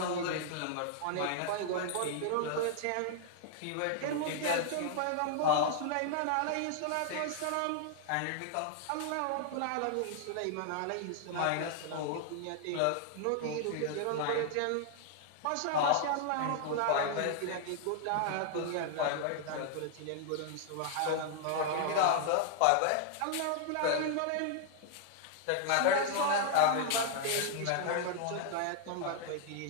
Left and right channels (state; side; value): different; both; correlation -0.01